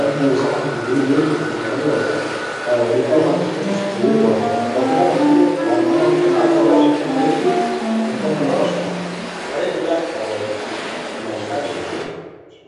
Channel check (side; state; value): both; identical; correlation 1.00